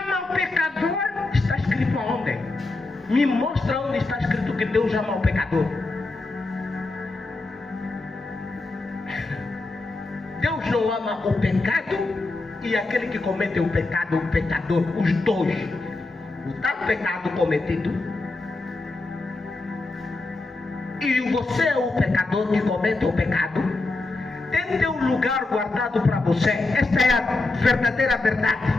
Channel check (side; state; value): right; quieter; 3.2 dB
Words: ama o pecador. Está escrito aonde? Me mostra onde está escrito que Deus ama o pecador. Deus não ama o pecado e aquele que comete o pecado, o pecador, os dois. O tal pecado cometido e você é o pecador que comete o pecado. Tem teu lugar guardado para você. Esta é a verdadeira